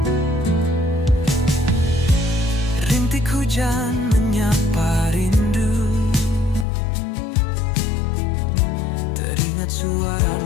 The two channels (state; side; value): drops out; right; at 6.7 s